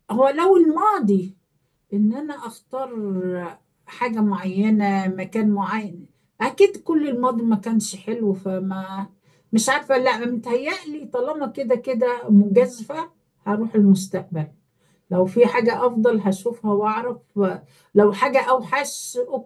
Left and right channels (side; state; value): both; identical; correlation 1.00